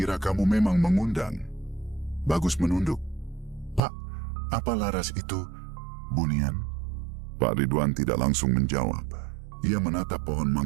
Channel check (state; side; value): drops out; left; at 3.8 s